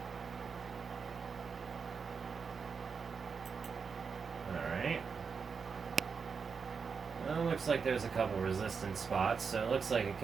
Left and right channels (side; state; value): left; quieter; 5.6 dB